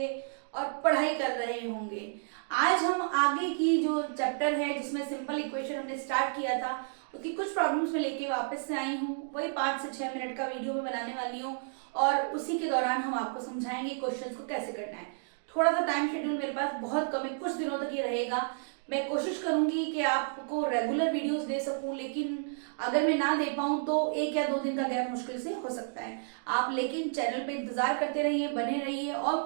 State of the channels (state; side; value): silent; left; digital silence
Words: और पढ़ाई कर रहे होंगे। आज हम आगे की जो चैप्टर है जिसमें सिंपल इक्वेशन हमने स्टार्ट किया था उसकी कुछ प्रॉब्लम्स में लेके वापस से आई हूँ। वही 5 से 6 मिनट का वीडियो में बनाने वाली हूँ और उसी के दौरान हम आपको समझाएंगे क्वेश्चंस को कैसे करना है। थोड़ा सा टाइम शेड्यूल मेरे पास बहुत कम है, कुछ दिनों तक ये रहेगा। मैं कोशिश करूंगी कि आपको रेगुलर वीडियोस दे सकूं, लेकिन अगर मैं ना दे पाऊं तो 1 या 2 दिन का गैप मुश्किल से हो सकता है। आप लेकिन चैनल पे इंतजार करते रहिए, बने रहिए। और